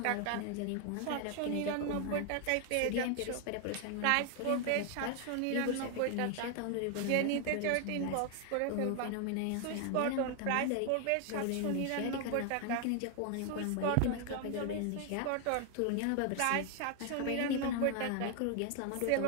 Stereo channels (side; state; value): both; different; correlation 0.00